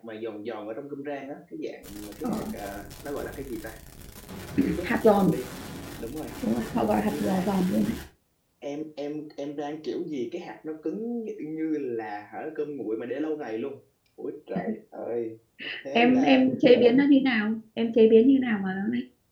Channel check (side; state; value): both; identical; correlation 1.00